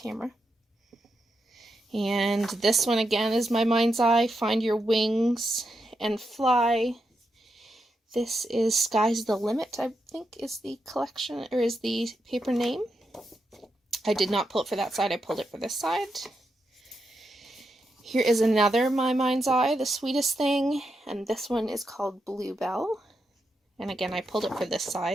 And this one again is My Mind's Eye, Find Your Wings and Fly. This is Sky's the Limit, I think is the collection, or is the paper name. I did not pull it for that side, I pulled it for this side. Here is another My Mind's Eye, The Sweetest Thing, and this one is called Bluebell. And again, I pulled it for this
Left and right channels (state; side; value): normal; both; correlation 0.85